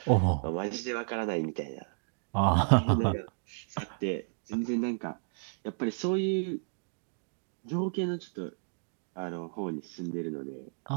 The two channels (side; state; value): left; silent; digital silence